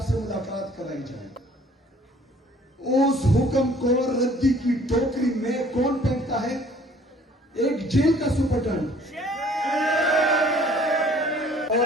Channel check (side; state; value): both; normal; correlation 0.56